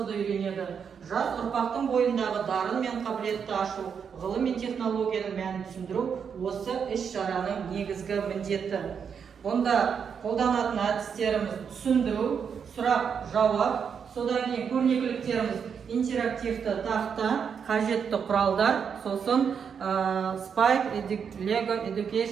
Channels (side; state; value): left; quieter; 6.9 dB